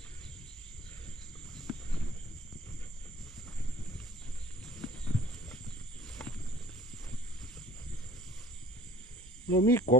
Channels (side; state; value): both; normal; correlation 0.51